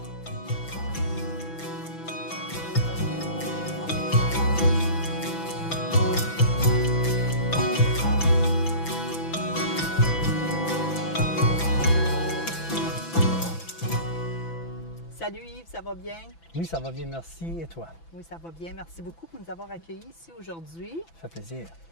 Salut Yves, ça va bien? Oui, ça va bien, merci. Et toi? Oui, ça va bien. Merci beaucoup pour nous avoir accueillis ici aujourd'hui. Ça fait plaisir.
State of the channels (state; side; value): late; right; 6.0 ms